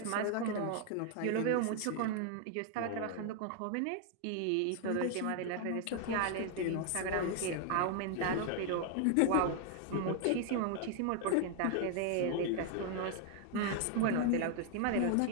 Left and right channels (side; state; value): both; different; correlation 0.00